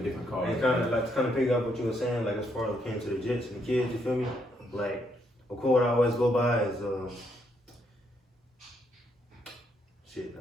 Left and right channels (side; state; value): both; normal; correlation 0.75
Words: different colors. And kind of pick up what you were saying, like as far as it came to the jits and the kids, you feel me? Like a quote I always go by is shit.